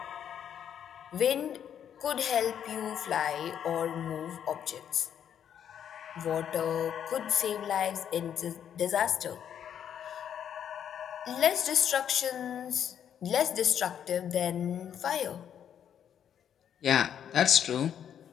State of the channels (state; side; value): quieter; right; 9.1 dB